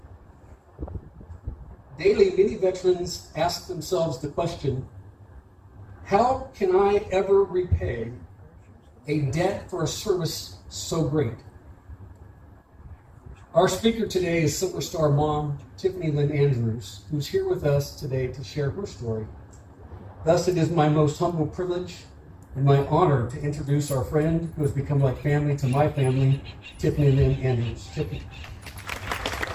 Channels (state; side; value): identical; both; correlation 1.00